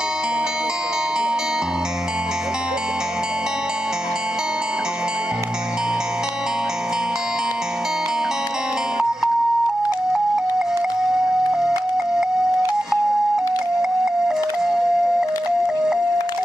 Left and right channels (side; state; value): both; normal; correlation 0.90